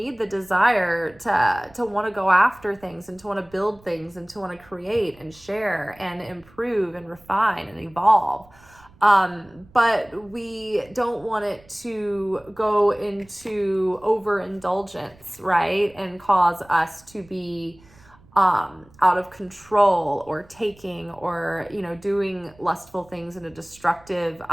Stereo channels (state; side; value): noise; right; rumble, 27 dB below the sound